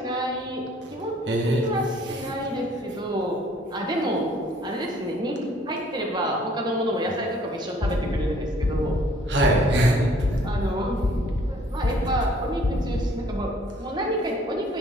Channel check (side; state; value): both; normal; correlation 0.58